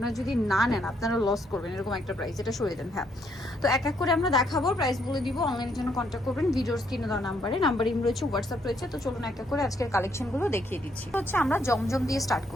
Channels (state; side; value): normal; both; correlation 0.72